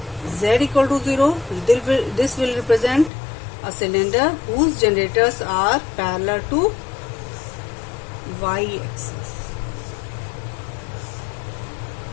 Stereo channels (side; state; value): right; drops out; at 3.1 s